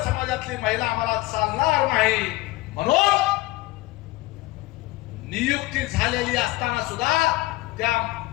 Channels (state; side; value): quieter; right; 19.4 dB